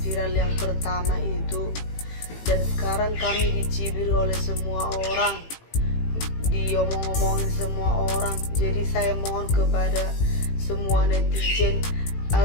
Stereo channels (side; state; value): right; late; 18 ms